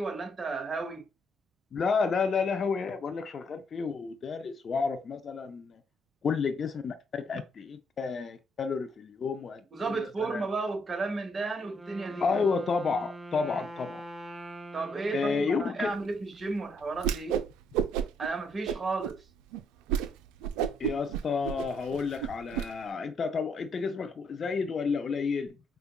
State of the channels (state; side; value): normal; both; correlation 0.72